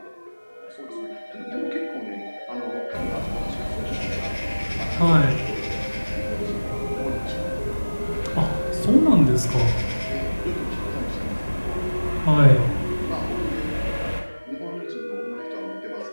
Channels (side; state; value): both; inverted; correlation -1.00